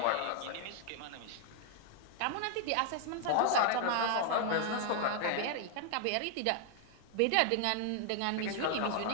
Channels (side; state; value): both; different; correlation 0.00